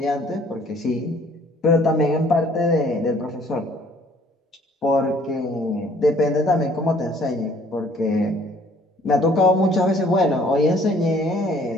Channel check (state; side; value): normal; both; correlation 0.58